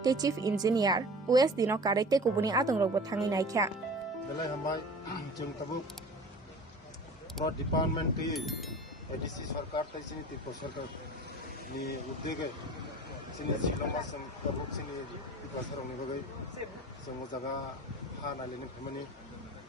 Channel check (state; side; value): normal; both; correlation 0.40